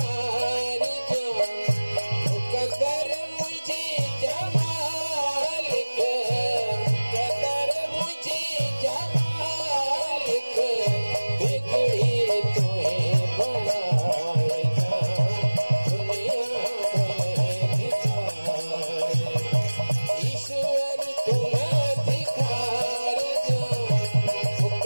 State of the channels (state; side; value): inverted; both; correlation -1.00